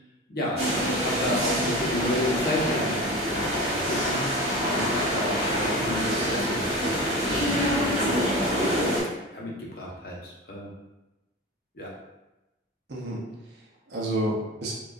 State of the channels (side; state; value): both; normal; correlation 0.29